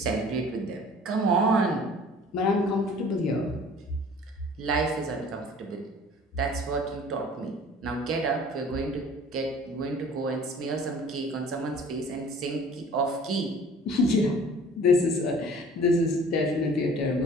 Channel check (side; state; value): both; normal; correlation 0.49